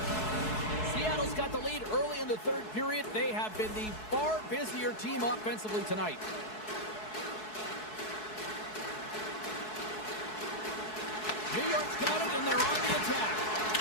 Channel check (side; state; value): right; late; 4.7 ms